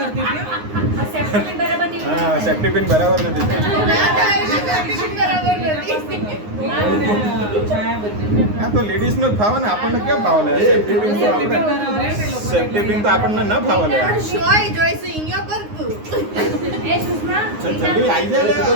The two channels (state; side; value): late; left; 9.6 ms